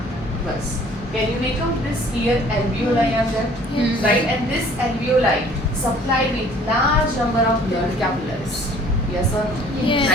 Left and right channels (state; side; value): normal; both; correlation 0.54